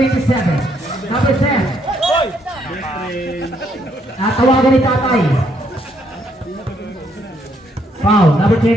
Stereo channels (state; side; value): normal; both; correlation 0.72